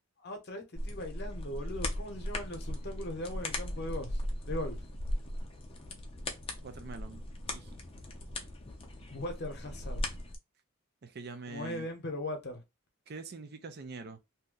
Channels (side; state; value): both; normal; correlation 0.54